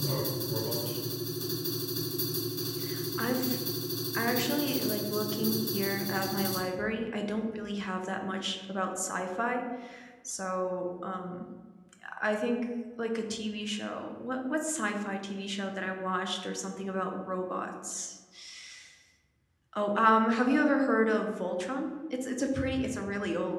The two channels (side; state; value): both; identical; correlation 1.00